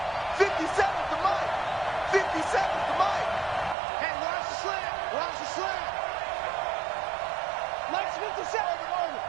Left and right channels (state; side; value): drops out; left; at 3.8 s